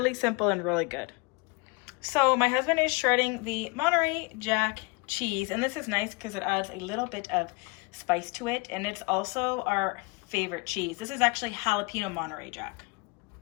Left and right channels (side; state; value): right; quieter; 28.3 dB